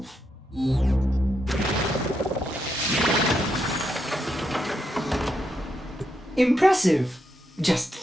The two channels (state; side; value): normal; both; correlation 0.81